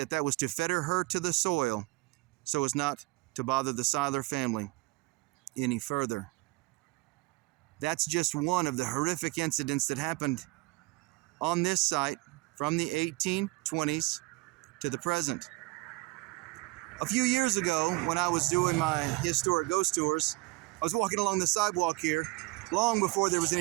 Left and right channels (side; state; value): left; quieter; 22.6 dB